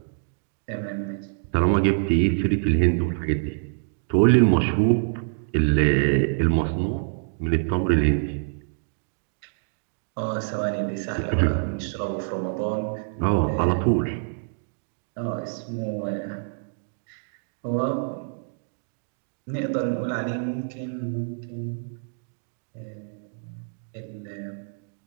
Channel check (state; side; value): silent; left; digital silence